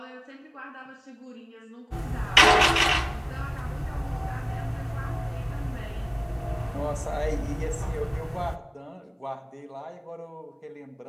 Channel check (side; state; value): both; identical; correlation 1.00